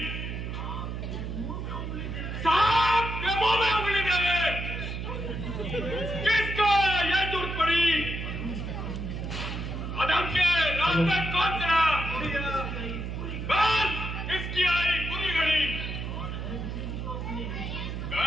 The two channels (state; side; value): noise; right; hum, 5 dB below the sound